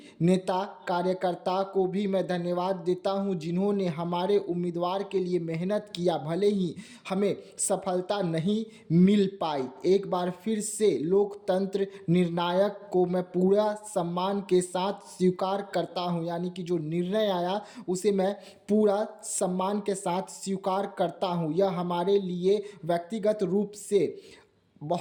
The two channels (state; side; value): identical; both; correlation 1.00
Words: नेता कार्यकर्ता को भी मैं धन्यवाद देता हूं, जिन्होंने हमारे उम्मीदवार के लिए मेहनत किया, भले ही हमें सफलता नहीं मिल पाई। एक बार फिर से लोकतंत्र निर्णायक को मैं पूरा सम्मान के साथ स्वीकार करता हूं, यानी कि जो निर्णय आया उसे मैं पूरा सम्मान के साथ स्वीकार करता हूं। यह हमारे लिए व्यक्तिगत रूप से